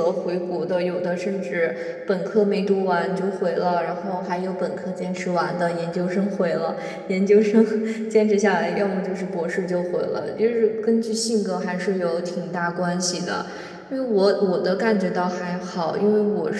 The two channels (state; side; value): identical; both; correlation 1.00